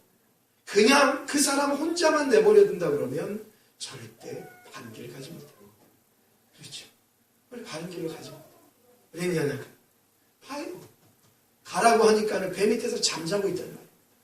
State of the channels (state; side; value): identical; both; correlation 1.00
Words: 그냥 그 사람 혼자만 내버려 둔다 그러면 절대 바른 길을 가지 못해요. 그렇죠. 우리 바른 길로 가지 못해요. 왜냐하면 봐요. 가라고 하니까는 배 밑에서 잠자고 있단 말이에요.